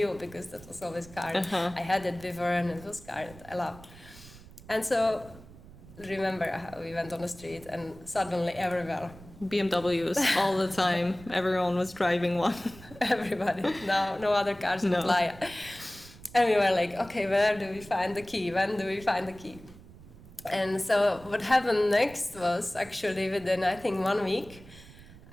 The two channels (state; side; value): noise; right; rumble, 20 dB below the sound